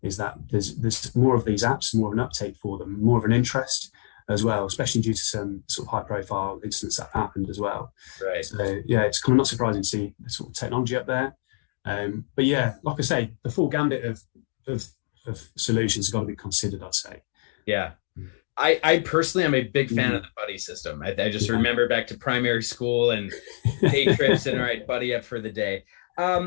is that there's more of these apps, more of an uptake for them, more of an interest as well, especially due to some sort of high-profile incidents that happened as well. Right. So yeah, it's kind of not surprising to see the sort of technology up there. But yeah, like I say, the full gambit of solutions have got to be considered, I'd say. Yeah. I personally am a big fan of the buddy system. I just remember back to primary school and day trips and all right, buddy up for the day.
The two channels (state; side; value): silent; right; digital silence